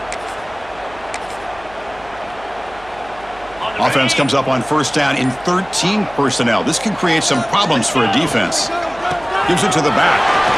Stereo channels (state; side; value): noise; right; hum, 22 dB below the sound